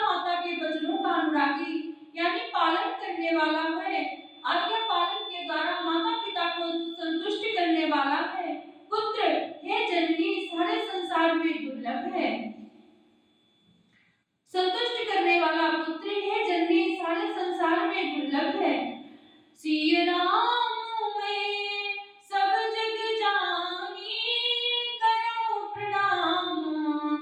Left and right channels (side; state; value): both; identical; correlation 1.00